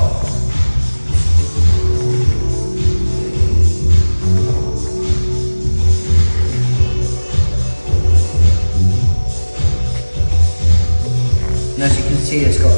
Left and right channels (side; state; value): both; inverted; correlation -1.00